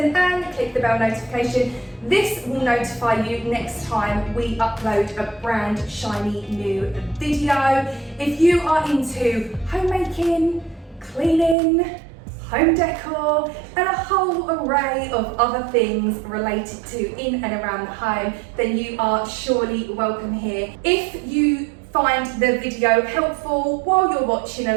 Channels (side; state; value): left; drops out; at 11.6 s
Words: and click the bell notification. This will notify you next time we upload a brand shiny new video. If you are into homemaking, cleaning, home decor, and a whole array of other things related to in and around the home, then you are surely welcome here. If you find the video helpful while you're watching